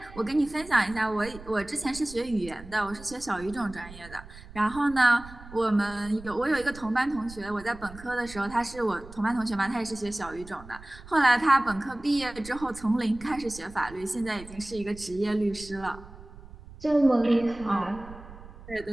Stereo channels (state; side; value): noise; right; rumble, 17 dB below the sound